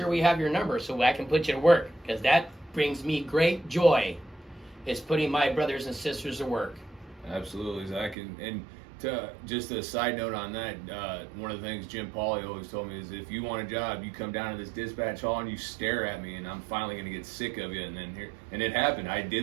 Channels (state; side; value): drops out; left; at 8.2 s